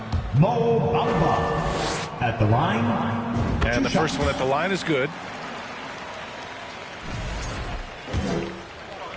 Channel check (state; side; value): identical; both; correlation 1.00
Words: Mo Bamba at the line. And the first one at the line is good.